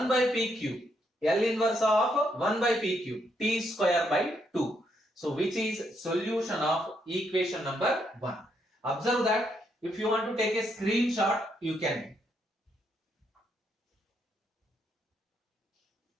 by p cube. L inverse of 1 by p cube. T square by 2. So which is solution of equation number 1. Observe that if you want to take a screenshot, you can.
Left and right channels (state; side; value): normal; both; correlation 0.76